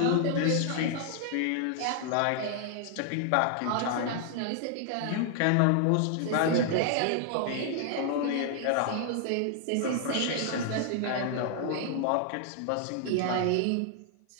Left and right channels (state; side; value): different; both; correlation 0.00